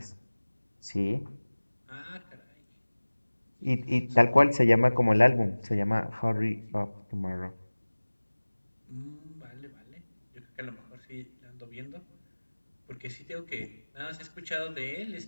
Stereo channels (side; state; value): both; inverted; correlation -1.00